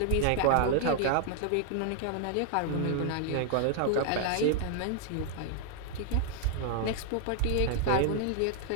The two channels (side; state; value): both; different; correlation -0.01